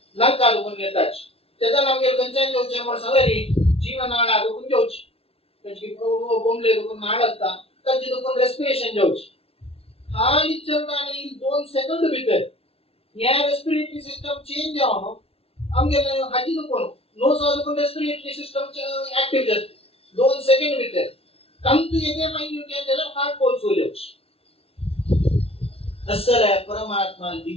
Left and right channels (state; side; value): late; right; 0.28 ms